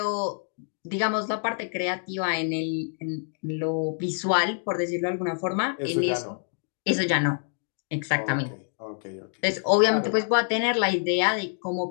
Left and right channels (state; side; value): silent; right; digital silence